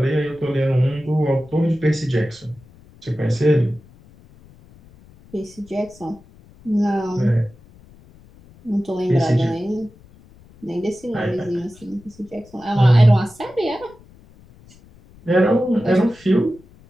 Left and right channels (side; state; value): left; noise; rumble, 25 dB below the sound